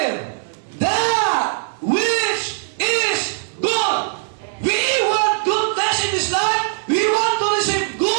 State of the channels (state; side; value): silent; left; digital silence